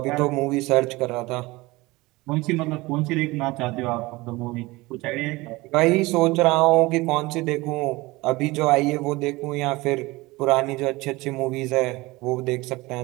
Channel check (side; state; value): left; quieter; 21.6 dB